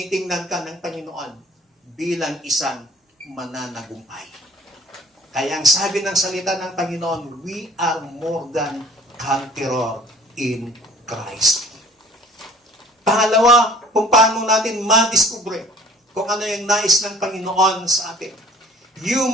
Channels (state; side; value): normal; both; correlation 0.51